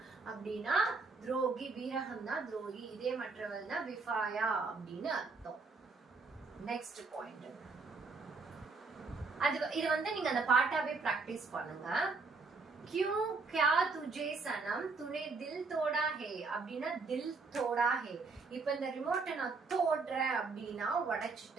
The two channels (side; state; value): left; quieter; 4.1 dB